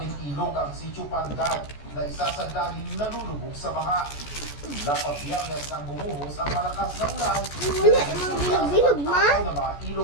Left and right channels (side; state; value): right; late; 14 ms